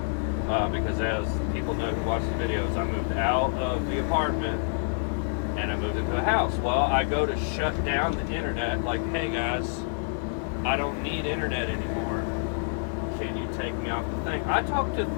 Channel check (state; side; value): silent; right; digital silence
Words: because, as people know who watch the videos, I moved out of the apartment and I moved into a house. Well, I go to shut down the internet, like, hey guys, I don't need internet anymore. Can you take me off the thing? I talked to